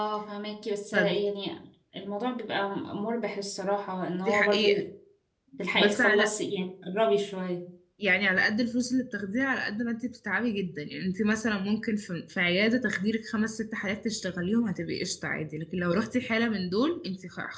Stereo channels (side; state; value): both; identical; correlation 1.00